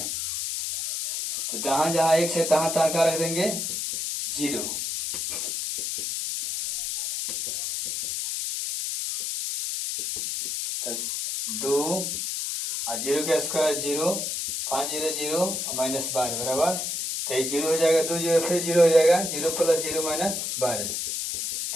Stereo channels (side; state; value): left; noise; hiss, 2 dB below the sound